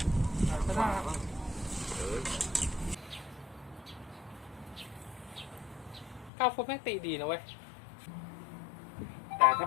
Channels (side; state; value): right; drops out; at 6.3 s